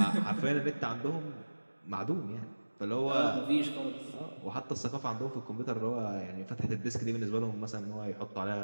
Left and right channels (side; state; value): both; inverted; correlation -1.00